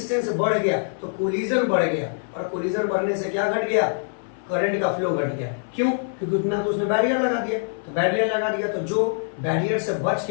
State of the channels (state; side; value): silent; right; 59 dB below the other